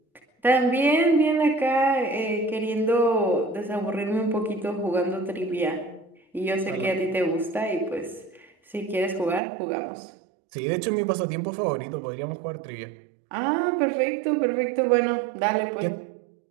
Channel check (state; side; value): drops out; left; at 9.4 s